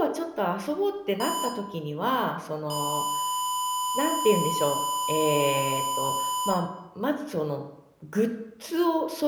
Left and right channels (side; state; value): both; identical; correlation 1.00